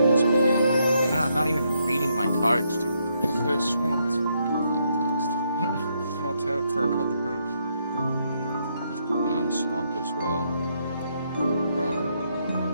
this meandering. No, I'm not even reading my cards, dude. Good swamps. I'll tap for a couple birds. Open on the swamp as well. Run.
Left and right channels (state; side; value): inverted; both; correlation -0.76